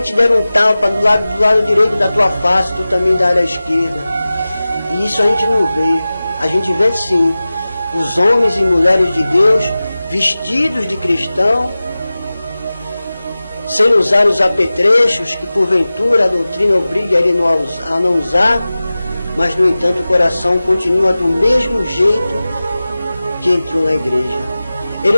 te der um tapa do lado direito da tua face, tu também dá à esquerda. E isso a gente não vê. A gente vê sim os homens e mulheres de Deus vestidos de cristão, sem usar os apetrechos que porventura a doutrina obriga ele a não usar, mas no entanto o coração continua do mesmo jeito que entrou na igreja. Ele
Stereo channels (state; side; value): inverted; both; correlation -0.97